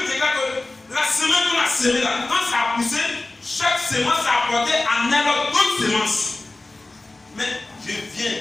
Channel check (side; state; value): right; quieter; 3.0 dB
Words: déclare que la semence qu'on a semée là, quand ça a poussé, chaque semence a apporté en elle d'autres semences. Mais je viens,